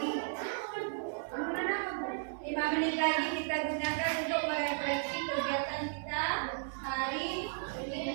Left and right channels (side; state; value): left; silent; 55 dB below the other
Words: 5 menit lagi kita gunakan untuk merefleksi kegiatan kita hari ini.